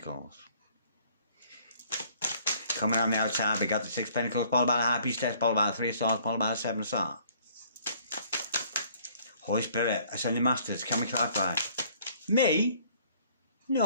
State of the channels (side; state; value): both; inverted; correlation -0.59